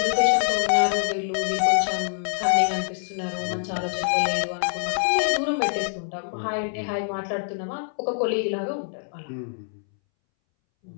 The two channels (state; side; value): silent; right; 62 dB below the other